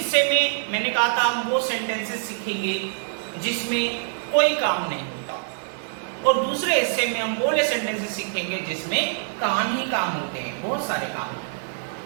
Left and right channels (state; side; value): silent; left; 62 dB below the other